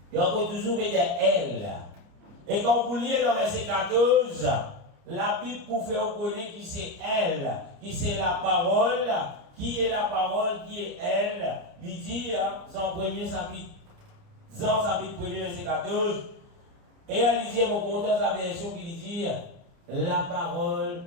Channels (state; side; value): late; left; 29 ms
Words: Il y a encore toujours dire elle. Et quand vous lisez dans verset 14, la Bible pour faire connaître qui c'est elle, qui c'est la parole, qui est la parole, qui est elle. Il dit dans premier chapitre, dans chapitre 1, verset 14, et elle dit, mon content sa version qui dit, la